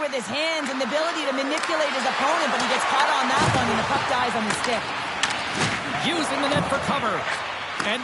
his hands and the ability to manipulate his opponent, but he gets caught on that one and the puck dies on his stick. Using the net for cover. And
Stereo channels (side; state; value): both; identical; correlation 1.00